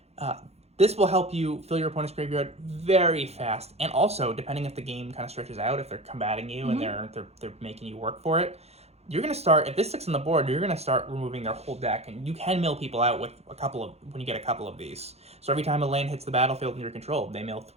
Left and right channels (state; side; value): late; left; 0.31 ms